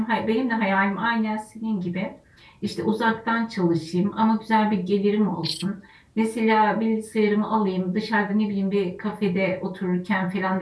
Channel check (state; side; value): identical; both; correlation 1.00